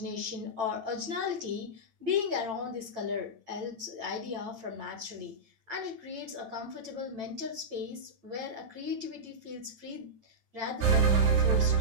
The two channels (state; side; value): late; left; 8.9 ms